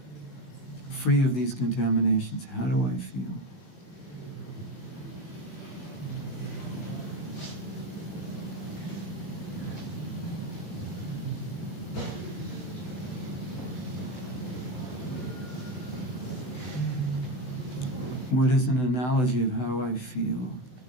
free of these contaminations. How do I feel? What is an analogy of how I feel?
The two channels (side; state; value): right; late; 16 ms